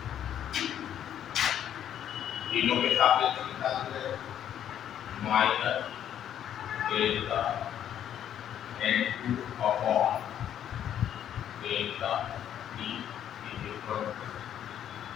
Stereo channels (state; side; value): quieter; right; 10.2 dB